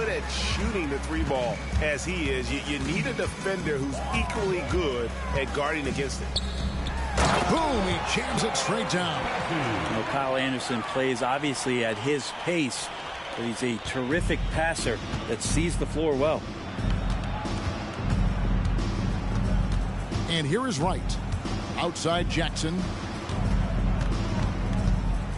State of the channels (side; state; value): both; identical; correlation 1.00